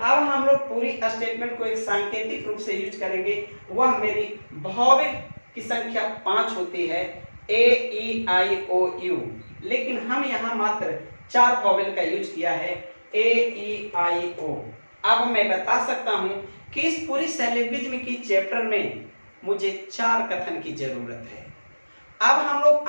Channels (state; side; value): inverted; both; correlation -1.00